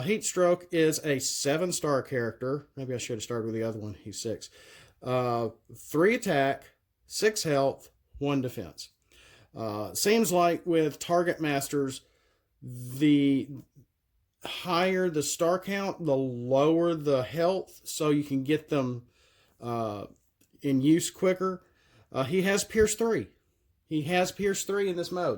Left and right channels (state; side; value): identical; both; correlation 1.00